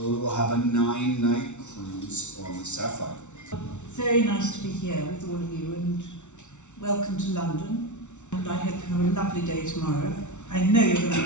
we will have a 9-night cruise on the SAPPHIRE. Very nice to be here with all of you, and welcome to London. And I hope you have a lovely day tomorrow. I know you're going to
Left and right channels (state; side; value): late; right; 0.83 ms